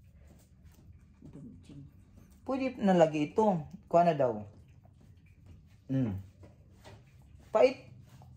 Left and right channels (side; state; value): both; identical; correlation 1.00